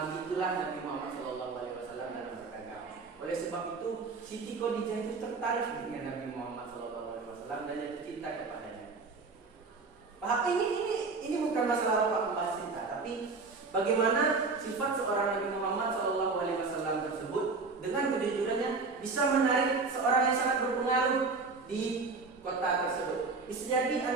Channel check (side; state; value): left; quieter; 4.2 dB